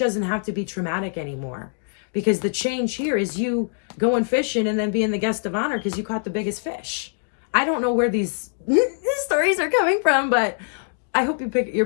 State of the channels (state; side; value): silent; right; digital silence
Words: have to be traumatic anymore, because the change here is you going fishing and then being the guest of honor because you caught the biggest fish. I don't know where these stories are coming from, but I hope you're